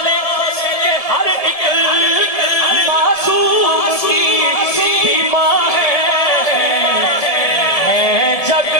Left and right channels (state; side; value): late; right; 1.7 ms